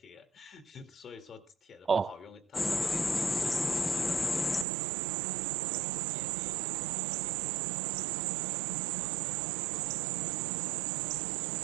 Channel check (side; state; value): left; drops out; at 4.7 s